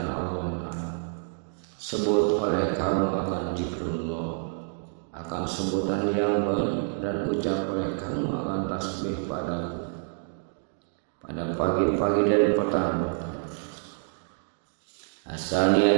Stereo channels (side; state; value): left; silent; 60 dB below the other